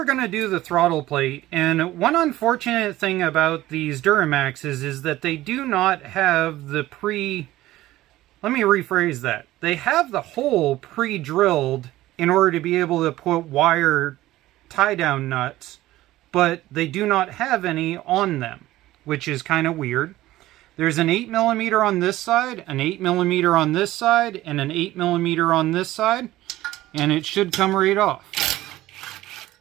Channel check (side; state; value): left; quieter; 16.1 dB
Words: going to do the throttle plate. And one unfortunate thing about these Duramaxes is that they do not have the let me rephrase that. They have the hole pre-drilled in order to be able to put wire tie-down nuts, but they do not have any on them, which is kind of weird. There's an 8mm on this side, an 8mm on this side, and an 8mm on this side, and it should come right off.